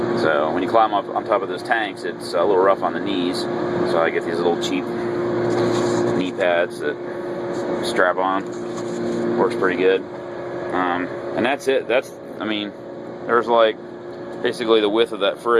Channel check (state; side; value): identical; both; correlation 1.00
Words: So when you climb up on top of those tanks, it's a little rough on the knees. So I get these little cheap knee pads that strap on. Works pretty good. And that's it. I mean, there's like basically the width of that